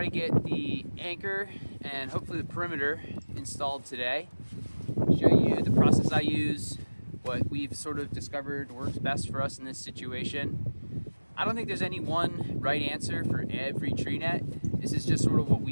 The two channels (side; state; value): both; inverted; correlation -1.00